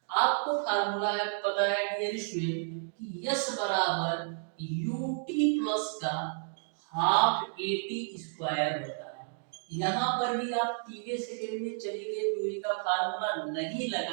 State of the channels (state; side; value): silent; left; digital silence